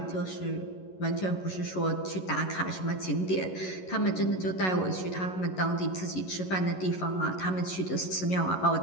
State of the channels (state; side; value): late; right; 11 ms